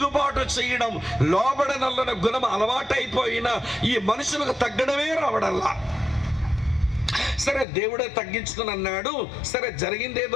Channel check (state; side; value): drops out; right; at 7.7 s